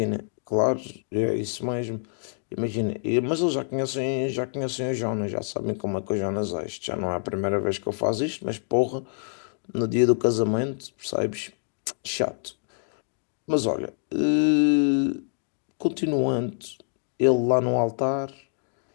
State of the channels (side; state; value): right; silent; digital silence